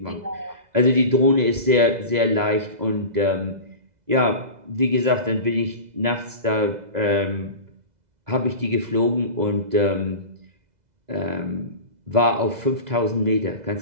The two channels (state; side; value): late; left; 2.0 ms